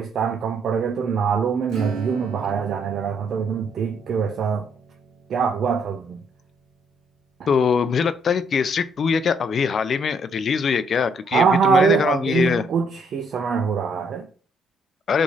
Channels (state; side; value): normal; both; correlation 0.69